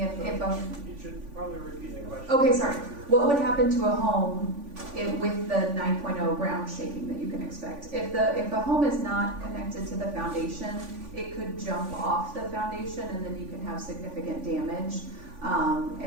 if You should probably repeat the question. okay, sorry. What would happen to a home with the 9.0 ground shaking that you can expect? If a home is not connected to the foundation, it could jump off the foundation, and then you can have significant damage.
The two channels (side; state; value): left; late; 3.5 ms